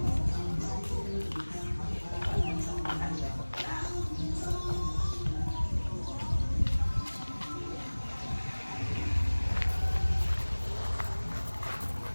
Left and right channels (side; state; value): both; inverted; correlation -1.00